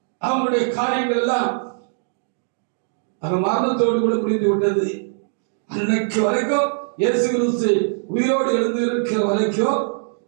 அவங்களுடைய காரியங்கள் எல்லாம் அந்த மரணத்தோடு கூட முடிந்து விட்டது. அன்னைக்கு வரைக்கும் இயேசு கிறிஸ்து உயிரோடு எழுந்து இருக்கிற வரைக்கும்,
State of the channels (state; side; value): silent; left; digital silence